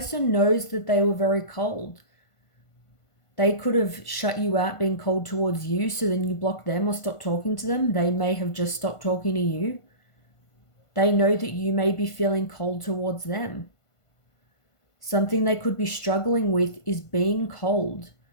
knows that they were very cold. They could have shut you out, being cold towards you, so then you block them or stop talking to them. They may have just stopped talking to you. They know that you may be feeling cold towards them. Something they could be struggling with is being cold.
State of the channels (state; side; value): late; right; 1.5 ms